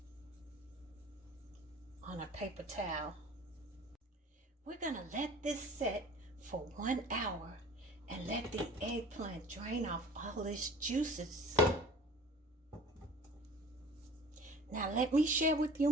on a paper towel. We're going to let this set for 1 hour and let the eggplant drain off all its juices. Now let me share with you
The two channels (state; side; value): normal; both; correlation 0.44